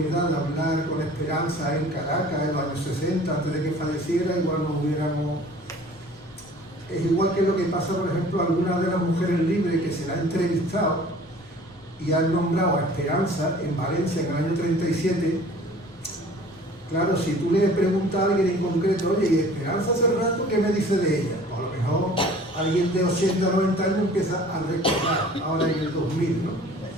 de hablar con Esperanza en Caracas en los años 60, antes de que falleciera, igual nos hubiéramos... Es igual que lo que pasa, por ejemplo, a algunas de las mujeres libres que se la han entrevistado y han nombrado a Esperanza en Valencia en el año 37. Claro, si tú le preguntas a alguien en concreto, oye, ¿y Esperanza hace rato qué me dice de ella? Pues a lo mejor alguien de 80 o 90 años empieza a recordar, ahora en el 2000, ¿no?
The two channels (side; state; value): right; noise; rumble, 28 dB below the sound